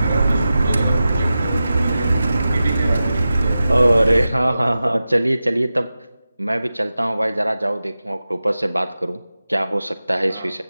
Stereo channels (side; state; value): both; inverted; correlation -0.93